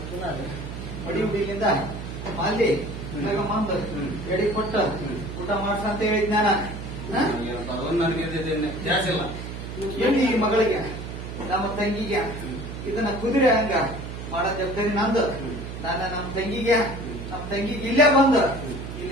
ಮಡಿ ಹುಡುಗಿಂದ ಮಾಲಿ ಮಂದು ಎಡಿ ಕೊಟ್ಟ ಊಟ ಮಾಡ್ಸ ಅಂತ ಹೇಳಿದ್ ಜಾಸ್ತಿ ಇಲ್ಲ. ಎಲ್ಲಿ ಈ ಮಗಳಿಗೆ ನಮ್ಮ ತಂಗಿಗೆ ಇದನ್ನ ಕುದುರೆ ಹಂಗ ಮಾಡೋ ಜವಾಬ್ದಾರಿ ನಂದು. ನಾನು ನಮ್ಮ ತಂಗಿಗೆ ಇಲ್ಲೇ ಬಂದು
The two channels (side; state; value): right; noise; hum, 8 dB below the sound